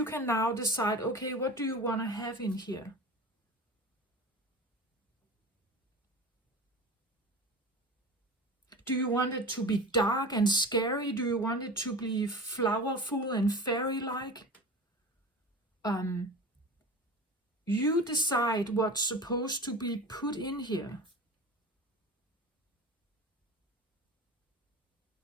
can now decide, okay, what do you want to have in here? Do you want it to be dark and scary? Do you want it to be flowerful and fairy-like? You decide what's supposed to be put in here.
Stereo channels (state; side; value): normal; both; correlation 0.33